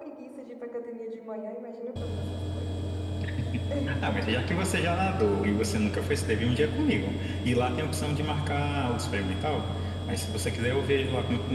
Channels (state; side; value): identical; both; correlation 1.00